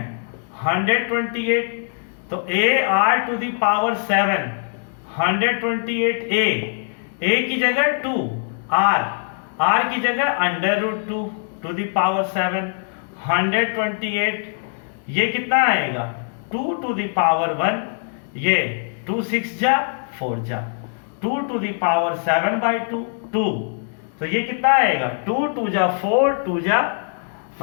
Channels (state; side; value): silent; right; digital silence